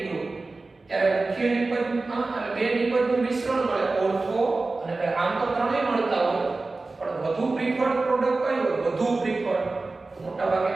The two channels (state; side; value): quieter; left; 3.5 dB